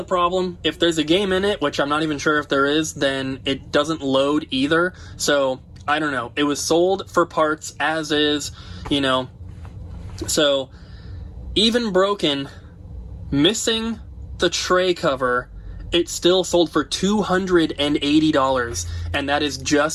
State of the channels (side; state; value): both; identical; correlation 1.00